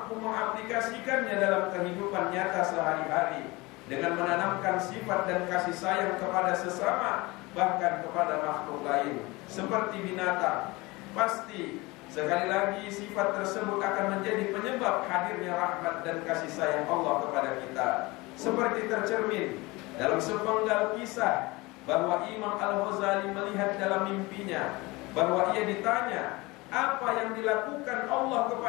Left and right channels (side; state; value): right; quieter; 23.0 dB